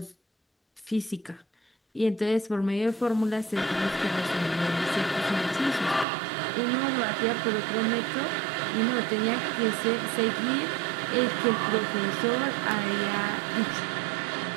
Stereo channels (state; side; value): drops out; left; at 6.1 s